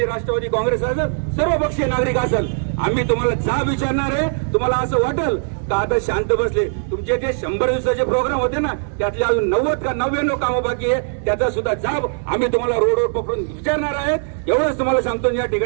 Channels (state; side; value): silent; left; digital silence